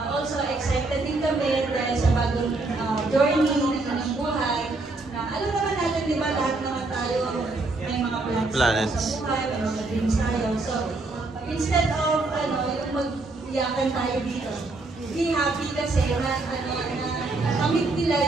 also excited din kami dahil sa bagong journey ng buhay na alam naman natin diba lahat naman tayo may mga plans sa buhay, may mga dreams tayo. So, instead of yung mag-iyakan tayo dito, be happy kasi na kamit nila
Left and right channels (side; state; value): left; quieter; 3.3 dB